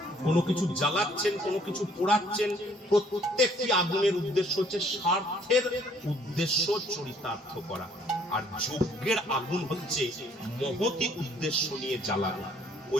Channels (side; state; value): both; normal; correlation 0.61